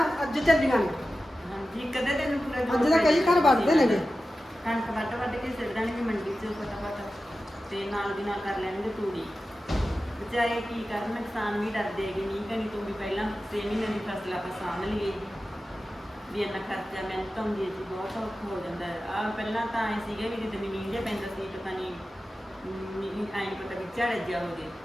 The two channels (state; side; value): normal; both; correlation 0.94